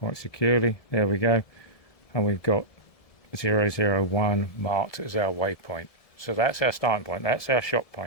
securely, there we go, and we've got 001 marked as our waypoint. So that's our starting point, that's our shot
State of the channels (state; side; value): late; right; 1.7 ms